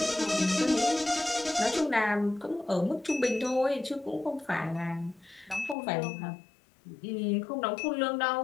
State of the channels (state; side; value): drops out; right; at 5.8 s